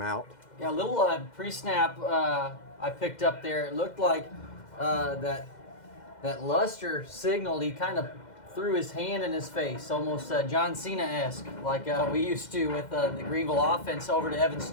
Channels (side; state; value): right; late; 2.1 ms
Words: out. Yeah, a little pre-snap I picked up there. It looked like that Luster signaled. He kind of threw his hand in his face, almost John Cena-esque, like we used to with the Greenville offense over to Evan